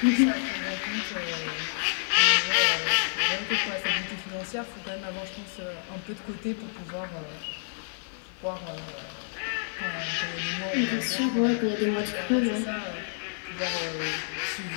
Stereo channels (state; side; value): silent; right; 59 dB below the other